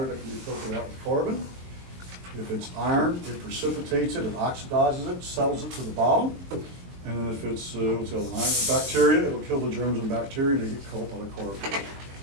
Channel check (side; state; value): left; late; 22 ms